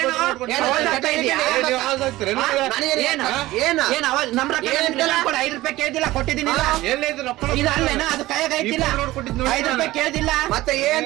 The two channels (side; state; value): left; quieter; 17.4 dB